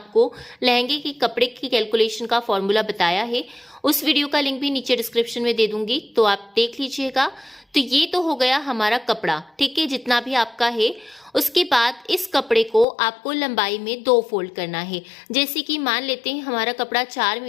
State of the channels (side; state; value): right; drops out; at 12.9 s